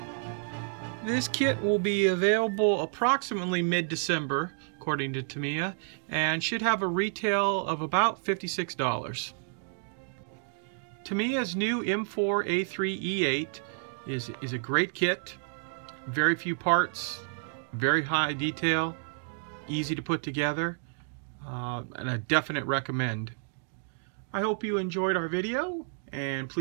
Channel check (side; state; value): left; silent; digital silence